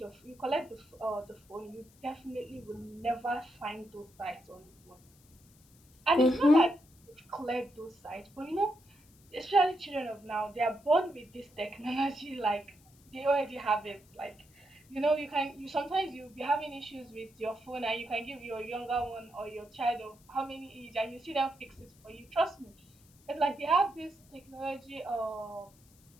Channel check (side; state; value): left; noise; hiss, 28 dB below the sound